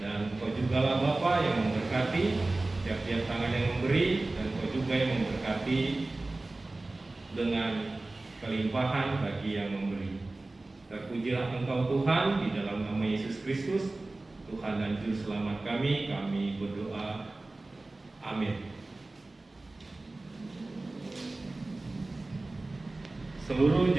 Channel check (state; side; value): quieter; left; 3.0 dB